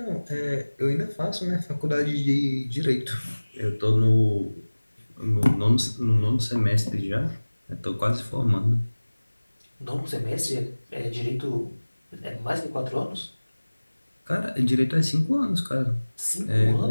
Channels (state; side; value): inverted; both; correlation -1.00